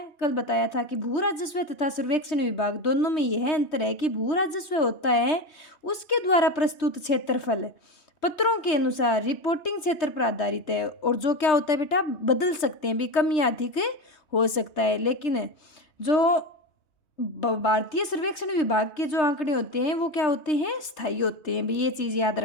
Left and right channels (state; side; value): late; right; 3.3 ms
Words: कल बताया था कि भू राजस्व तथा सर्वेक्षण विभाग दोनों में यह अंतर है कि भू राजस्व होता है उसके द्वारा प्रस्तुत क्षेत्रफल पत्रों के अनुसार रिपोर्टिंग क्षेत्र पर आधारित है, और जो क्या होता है बेटा, बदल सकते हैं भी, कम या अधिक हो सकता है। लेकिन जो भारतीय सर्वेक्षण विभाग के जो आंकड़े होते हैं वो क्या होते हैं? स्थायी होते हैं भी। ये चीज़ याद